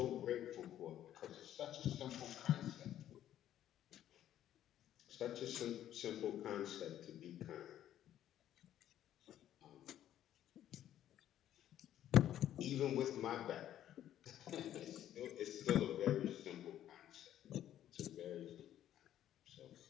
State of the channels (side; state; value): right; quieter; 11.7 dB